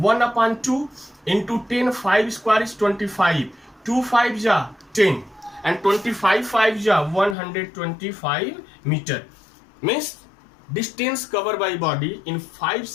upon 2 into 10, 5 square is 25, 2 5 ja 10, and 25 5 ja 125 meter. Means distance covered by body in 5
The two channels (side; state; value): right; drops out; at 7.4 s